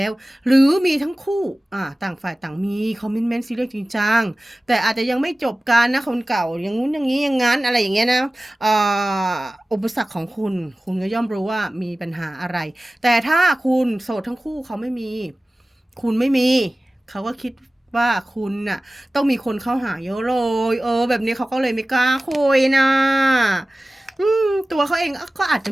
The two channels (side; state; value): both; normal; correlation 0.97